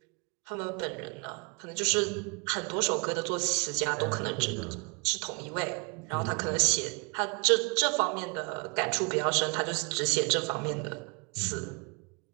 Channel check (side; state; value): left; quieter; 32.3 dB